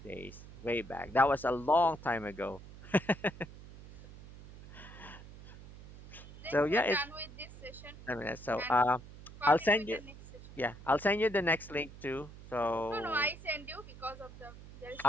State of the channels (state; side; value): noise; right; hum, 17 dB below the sound